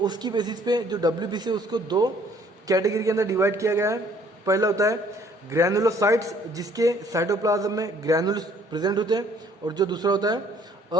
उसकी बेसिस पे जो डब्ल्यूबीसी है उसको दो कैटेगरी के अंदर डिवाइड किया गया है। पहला होता है ग्रैनुलोसाइट्स, जिसके साइटोप्लाज्म में ग्रैनुल्स प्रेजेंट होते हैं, और जो दूसरा होता है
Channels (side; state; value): both; normal; correlation 0.60